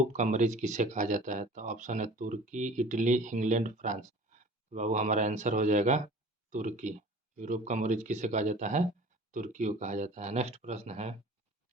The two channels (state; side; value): normal; both; correlation 0.44